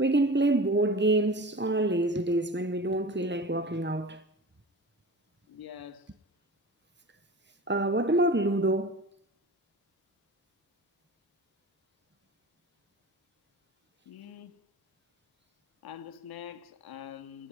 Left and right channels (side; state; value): both; normal; correlation 0.35